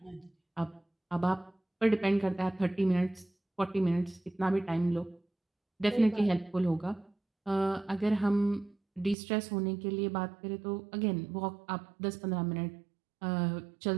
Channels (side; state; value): left; drops out; at 9.2 s